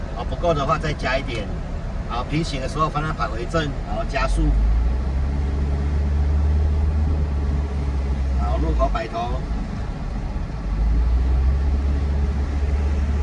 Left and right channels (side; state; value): both; identical; correlation 1.00